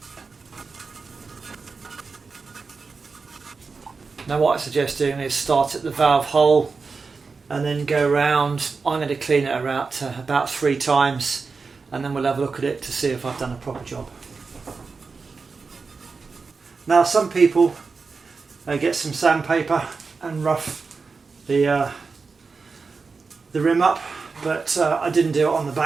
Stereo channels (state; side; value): quieter; left; 4.6 dB